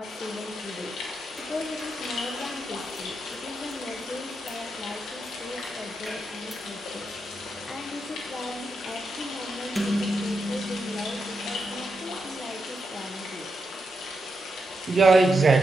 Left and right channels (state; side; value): normal; both; correlation 0.85